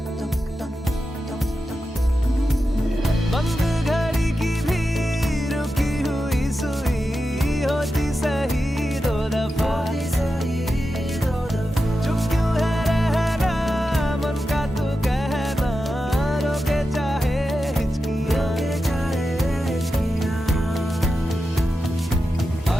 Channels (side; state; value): both; normal; correlation 0.90